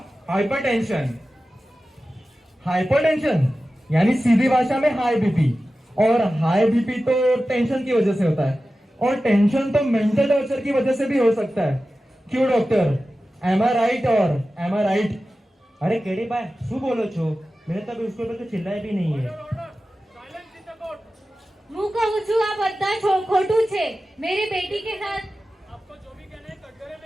हाइपरटेंशन। हाइपरटेंशन यानी सीधी भाषा में हाई बीपी, और हाई बीपी तो टेंशन की वजह से होता है और टेंशन तो मेंटल टॉर्चर की वजह से भी हो सकता है। क्यों डॉक्टर, एम आई राइट और एम आई राइट? अरे केड़ी भाई शू बोलो छो? मैंने तो अभी उसके ऊपर तो चिल्लाया भी नहीं है। હું કહું છું આ બધા ખોટું છે। मेरी बेटी के साथ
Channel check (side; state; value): both; normal; correlation 0.94